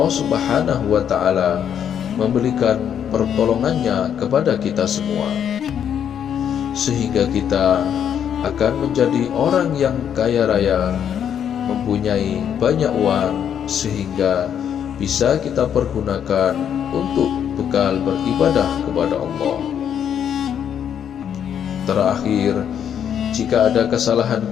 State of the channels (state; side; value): quieter; right; 8.8 dB